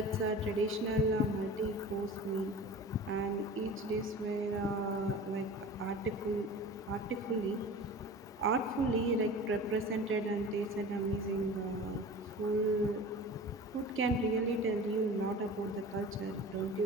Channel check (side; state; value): both; normal; correlation 0.37